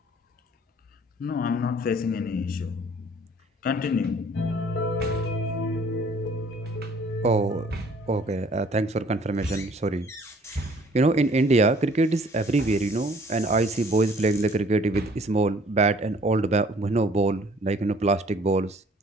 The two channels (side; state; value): both; normal; correlation 0.56